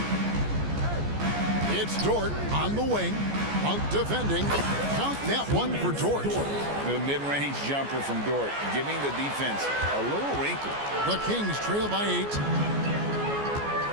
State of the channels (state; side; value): late; left; 14 ms